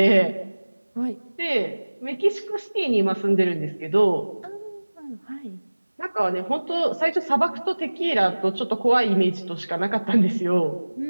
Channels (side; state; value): both; inverted; correlation -1.00